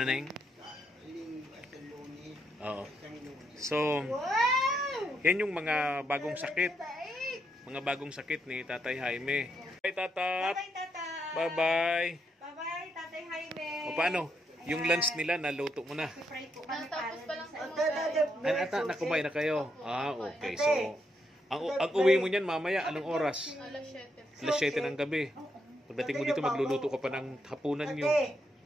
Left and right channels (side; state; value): both; normal; correlation 0.79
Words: na yun? Oo. So, Wow! yan yung mga bagong sakit. Mga bagong sakit ni Tatay Jaime. Bye, Tatat! Bye-bye, Tata. Bye-bye! Bye-bye, Tatay Jaime. O paano? Yung lunch nila, naluto mo na. Pray po kami Natapos pa lang sa Ata, nakumain na kayo? Ah, okay. So, ang uwi mo niyan mamaya, anong oras? Alas 7. Alas 7 ng gabi. Pagdating mo dito, magluluto ka pa ng hapunan nyo. Okay.